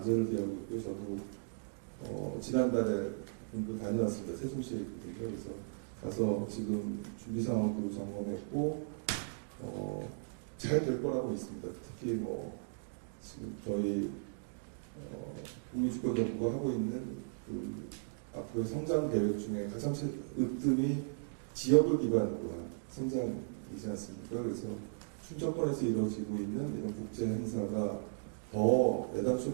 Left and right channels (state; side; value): silent; left; digital silence